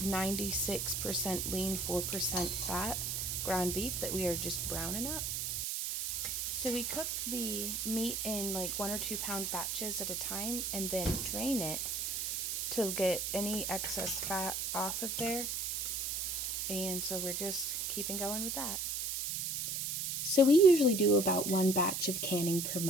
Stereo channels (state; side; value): noise; right; hiss, 1 dB below the sound